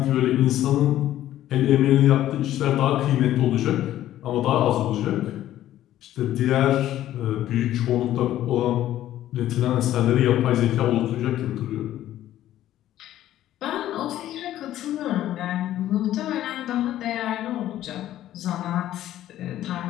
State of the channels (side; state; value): right; quieter; 13.0 dB